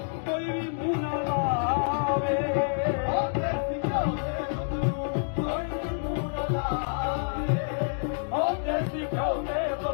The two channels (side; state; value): right; silent; digital silence